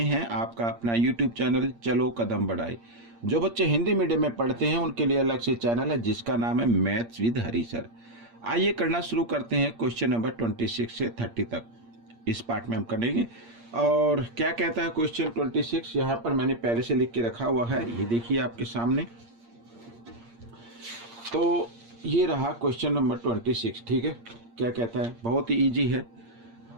हैं आपका अपना यूट्यूब चैनल चलो कदम बढ़ाए। जो बच्चे हिंदी मीडियम में पढ़ते हैं उनके लिए अलग से चैनल है जिसका नाम है मैथ्स विद हरी सर। आइए करना शुरू करते हैं क्वेश्चन नंबर 26 से 30 तक। इस पार्ट में हम करेंगे। और क्या कहता है क्वेश्चन 26, यहाँ पर मैंने पहले से लिख के रखा हुआ है, ये देखिए आपके सामने। तो ये रहा क्वेश्चन नंबर 26। ठीक है, क्या कहता है, बहुत ही इजी है।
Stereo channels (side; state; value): left; late; 8.6 ms